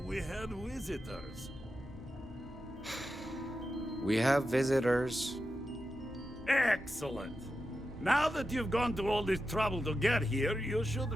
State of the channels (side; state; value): both; normal; correlation 0.90